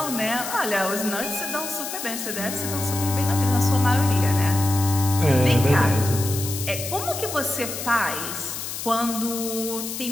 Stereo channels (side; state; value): left; noise; hiss, 7 dB below the sound